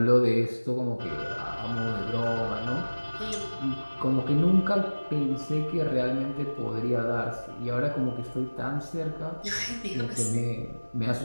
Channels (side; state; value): both; inverted; correlation -1.00